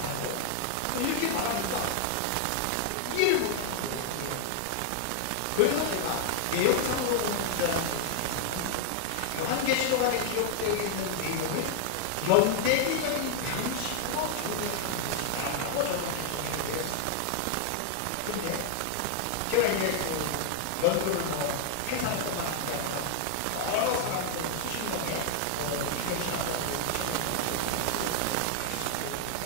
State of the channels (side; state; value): both; different; correlation 0.00